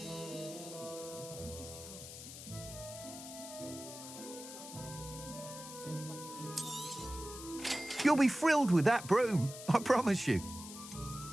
You'll be thrilled with that broom, I promise you.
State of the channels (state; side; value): noise; left; hiss, 12 dB below the sound